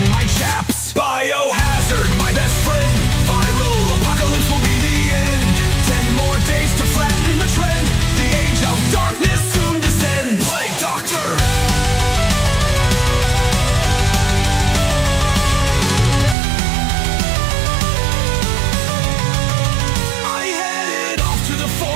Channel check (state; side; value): drops out; left; at 16.4 s